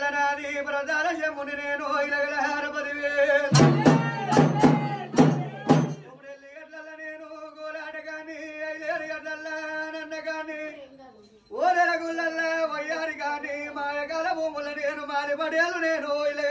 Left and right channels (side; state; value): both; identical; correlation 1.00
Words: నాది ప్రధాన శంభుని నేను ఇలగలహార పదివే గడ్డల్ల నేను గోలాట గాని 5 గడ్డల్ల నన్న గాని ఓదల గుళ్ళల్ల వయ్యారి గాని మాయకాల భూముల నేను మారి పడేలు నేను